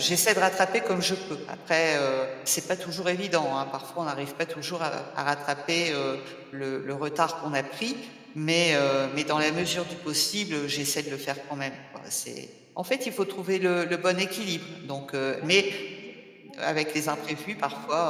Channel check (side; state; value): both; identical; correlation 1.00